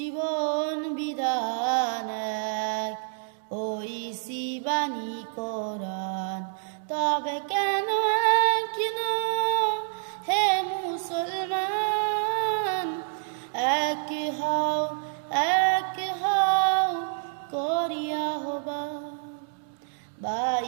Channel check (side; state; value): left; silent; digital silence